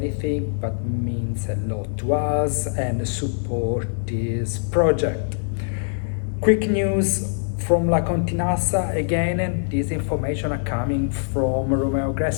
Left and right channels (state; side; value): silent; right; digital silence